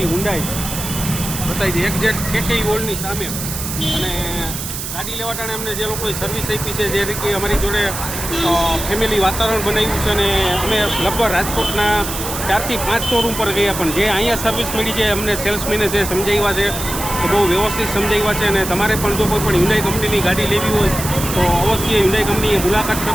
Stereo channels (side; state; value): right; noise; hiss, 6 dB below the sound